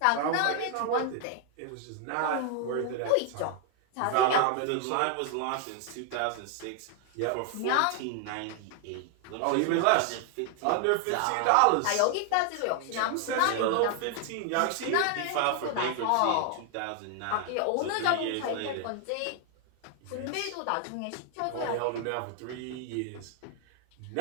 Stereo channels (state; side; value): different; both; correlation 0.00